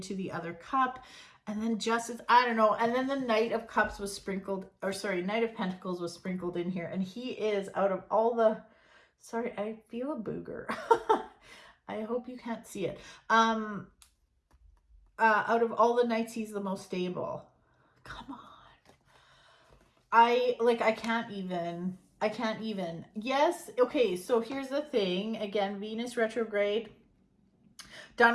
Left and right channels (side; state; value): both; identical; correlation 1.00